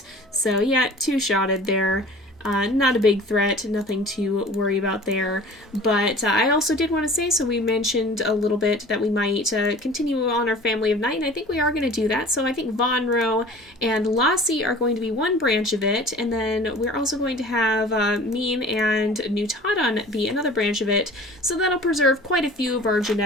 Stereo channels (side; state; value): both; normal; correlation 0.44